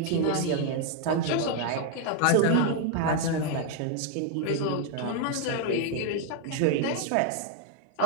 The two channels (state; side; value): different; both; correlation 0.00